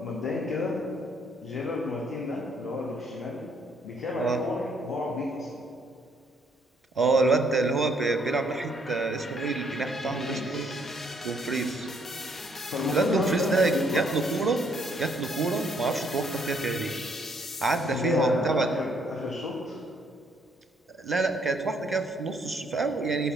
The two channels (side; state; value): both; normal; correlation 0.68